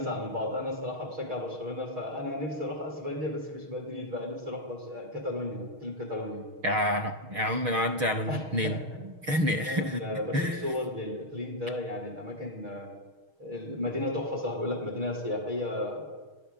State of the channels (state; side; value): late; left; 6.4 ms